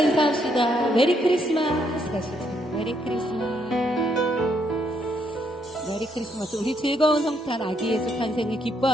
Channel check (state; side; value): normal; both; correlation 0.74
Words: 메리 크리스마스 가시죠. 메리 크리스마스. 메리 크리스마스. 우리 즐거운 성탄 아기 예수 탄생을